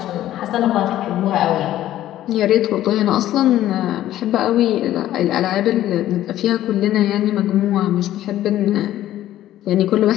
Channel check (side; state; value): right; quieter; 13.3 dB